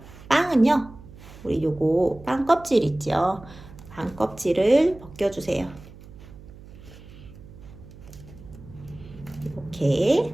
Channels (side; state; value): right; noise; hum, 18 dB below the sound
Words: 빵은요, 우리 요거 빵 껍질 있죠? 빵 껍질을 벗겨주세요. 이렇게